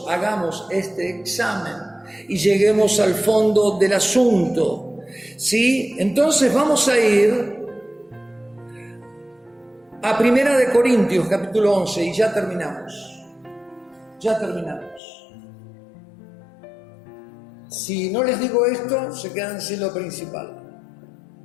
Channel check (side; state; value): right; drops out; at 15.0 s